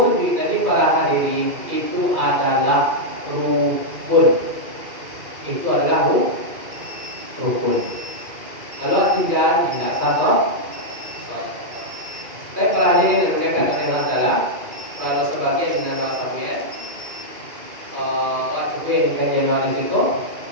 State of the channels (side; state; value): left; late; 2.4 ms